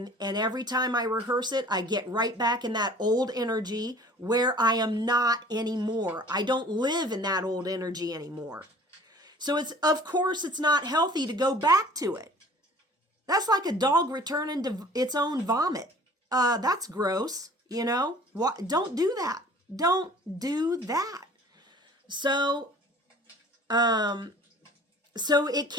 every time I rehearse it, I get right back in that old energy where I am not anymore. I don't live in that old energy anymore. So of course it's not healthy to go back to it. That's like a dog returning to its own vomit. That's gross, Don't do that. Don't do that. So it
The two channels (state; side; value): normal; both; correlation 0.48